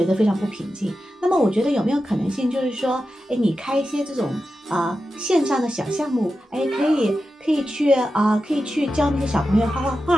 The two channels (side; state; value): both; normal; correlation 0.91